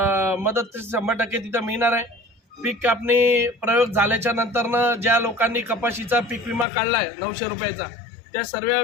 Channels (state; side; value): drops out; right; at 6.7 s